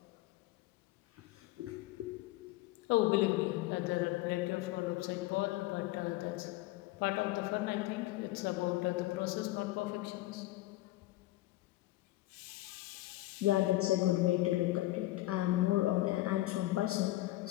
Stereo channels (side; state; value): right; quieter; 17.5 dB